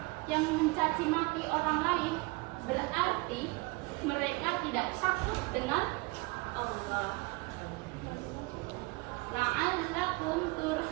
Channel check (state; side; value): quieter; left; 25.6 dB